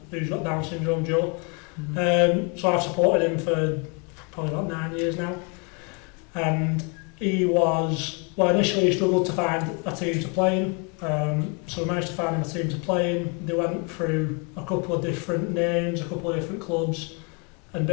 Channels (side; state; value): right; quieter; 34.3 dB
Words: who's got Down syndrome, Joe. Mm-hmm. So I've supported him for probably about 9 years now, and initially he struggled to find a team to play in, so we managed to find him a team to play in. They went through a couple of different names, a couple of different clubs, and